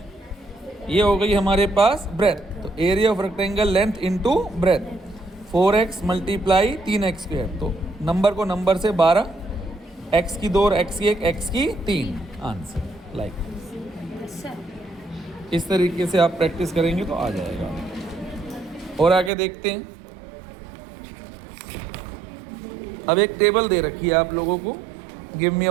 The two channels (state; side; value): drops out; left; at 19.3 s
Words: ये हो गई हमारे पास ब्रेथ। तो area of rectangle length into breadth. 4x multiply 3x square, तो नंबर को नंबर से 12, x की 2 और x की 1, x की 3 आंसर। लाइक इस तरीके से आप प्रैक्टिस करेंगे तो आ जाएगा। और आगे देखते हैं। अब एक टेबल दे रखी है आप लोगों को। Give me